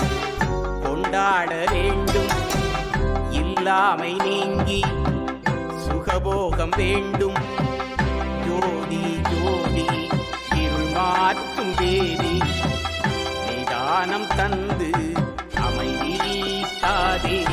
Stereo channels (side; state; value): both; identical; correlation 1.00